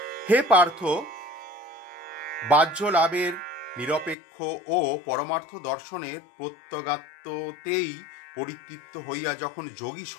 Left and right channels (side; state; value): right; drops out; at 4.2 s